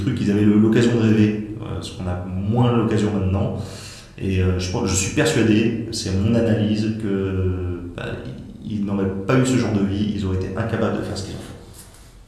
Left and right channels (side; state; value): both; identical; correlation 1.00